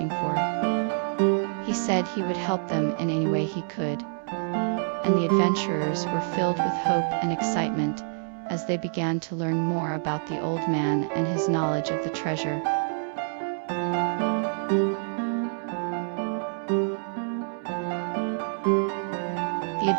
for. He said he would help them in any way he could, and the adventurers were filled with hope and excitement as they began to learn more about the old man and his knowledge of the treasure. The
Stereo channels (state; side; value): silent; left; 60 dB below the other